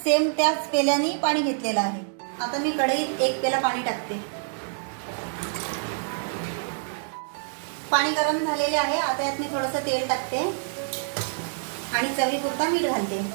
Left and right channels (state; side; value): silent; left; digital silence